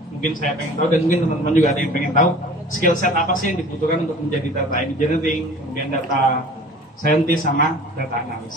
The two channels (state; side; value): normal; both; correlation 0.45